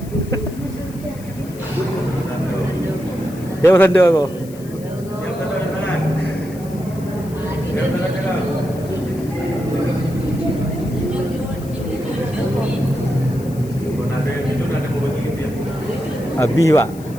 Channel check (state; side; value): noise; left; hiss, 21 dB below the sound